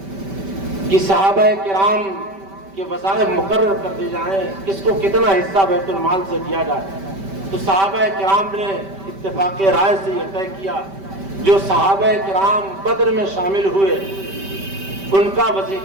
کہ صحابہ کرام کے وظائف مقرر کر دی جائیں، کس کو کتنا حصہ بیت المال سے دیا جائے۔ تو صحابہ کرام نے اتفاق رائے سے یہ طے کیا، جو صحابہ کرام بدر میں شامل ہوئے ان کا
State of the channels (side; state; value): left; late; 5.1 ms